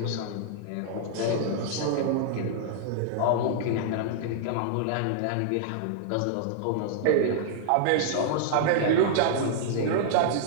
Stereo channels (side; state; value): both; different; correlation -0.01